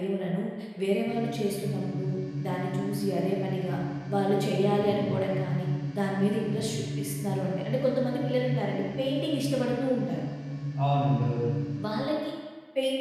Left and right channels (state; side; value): identical; both; correlation 1.00